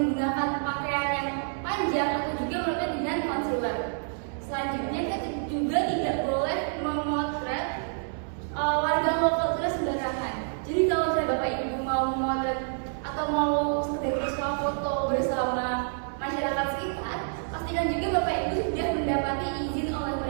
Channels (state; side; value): silent; left; digital silence